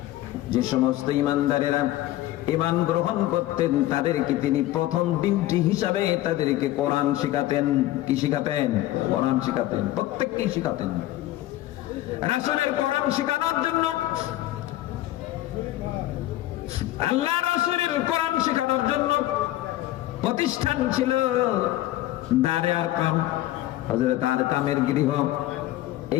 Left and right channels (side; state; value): right; quieter; 15.3 dB